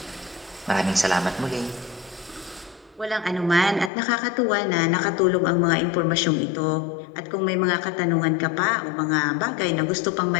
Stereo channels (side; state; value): right; drops out; at 3.9 s